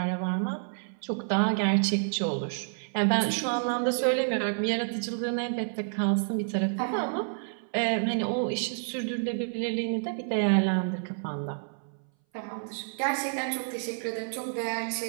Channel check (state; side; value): silent; left; 58 dB below the other